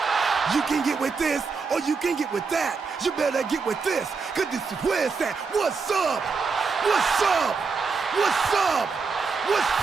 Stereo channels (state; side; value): quieter; left; 4.9 dB